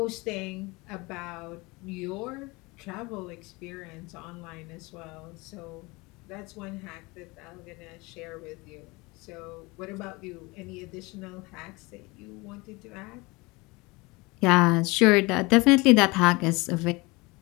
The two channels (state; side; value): quieter; right; 24.5 dB